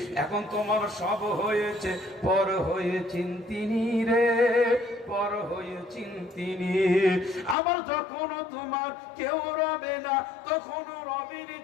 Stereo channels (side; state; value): right; drops out; at 7.6 s